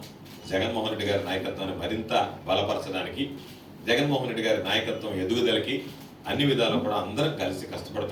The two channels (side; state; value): both; identical; correlation 1.00